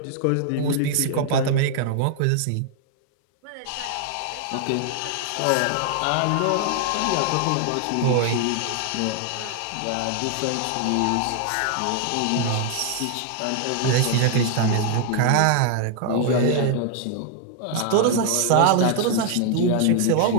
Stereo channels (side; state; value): both; different; correlation 0.00